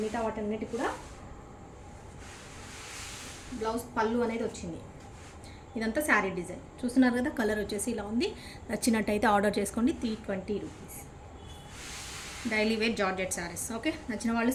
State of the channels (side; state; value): both; identical; correlation 1.00